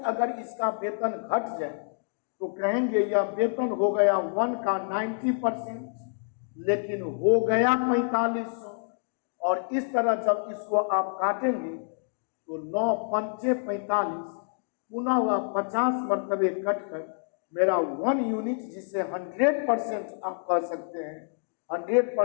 अगर इसका वेतन घट जाए तो कहेंगे यह वेतन हो गया 1 का 90%, लेकिन हो गया 4500। और इस तरह जब इसको आप काटेंगे तो 9 पंचे 45, पुनः वह 50 मरतबे कटकर मेरा 1 यूनिट, जिसे 100% आप कह सकते हैं,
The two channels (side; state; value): right; silent; digital silence